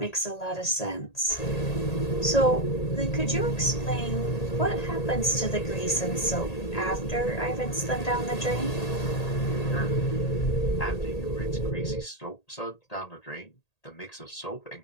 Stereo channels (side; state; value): right; late; 1.8 ms